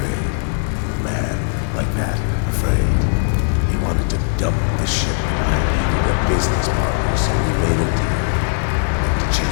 A man like that, afraid. He wanted to dump the ship, and I needed a business partner, so we made a deal. To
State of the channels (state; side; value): silent; right; 67 dB below the other